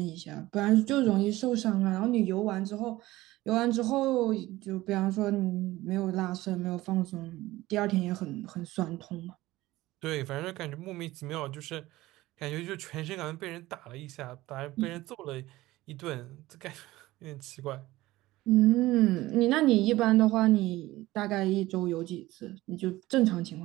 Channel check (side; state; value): left; quieter; 17.7 dB